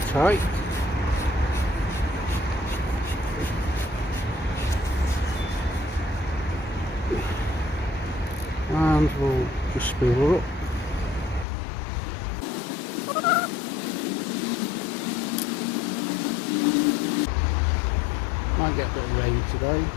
tight. And we'll just spool her up. Might get a bit of rain today.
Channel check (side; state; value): right; drops out; at 11.5 s